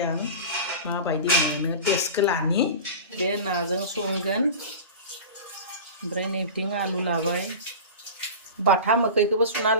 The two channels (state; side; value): inverted; both; correlation -0.31